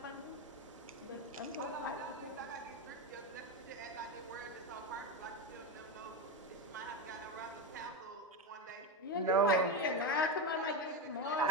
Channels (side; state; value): both; normal; correlation 0.14